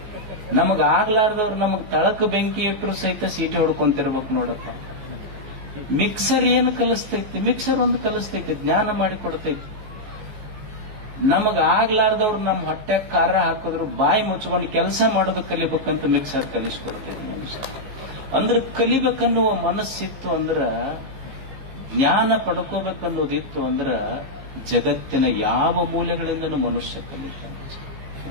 ನಮಗ್ ಆಗ್ಲಾರ್ದವ್ರು ನಮಗ್ ತಳಕ ಬೆಂಕಿ ಇಟ್ಟರು ಸಹಿತ ಸೀಟಿ ಹೊಡ್ಕೊಂತಿರ್ಬೇಕು ನೋಡಪ್ಪ. ಮಿಕ್ಸರ್ ಏನು ಕಲಿಸ್ತೈತಿ? ಮಿಕ್ಸರ್ ಒಂದು ಕಲಿಸ್ತೈತಿ, ಜ್ಞಾನ ಮಾಡಿ ಕೊಡ್ತೈತಿ. ನಮಗ್ ಆಗ್ಲಾರ್ದವ್ರು ನಮ್ಮ ಹೊಟ್ಟೆ ಖಾರ ಹಾಕಿದ್ರು ಬಾಯಿ ಮುಚ್ಕೊಂಡು ಕೆಲಸ ಮಾಡೋದು ಕಲಿಬೇಕಂತ ಮಿಕ್ಸರ್ ಕಲಿಸ್ಕೊಡ್ತೈತಿ ಮನುಷ್ಯ. ಅಂದ್ರೆ ಕಲಿಬೇಕನ್ನುವ ಮನಸ್ಸಿತ್ತು ಅಂದ್ರ, ಜ್ಞಾನ ಪಡ್ಕೋಬೇಕನ್ನೋದಿತ್ತು ಅಂದ್ರ ಜಗತ್ತಿನ ಯಾವ ಮೂಲೆಗಳಿಂದನೂ ಮನುಷ್ಯ ಕಲಿತಾನೆ.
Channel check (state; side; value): late; left; 15 ms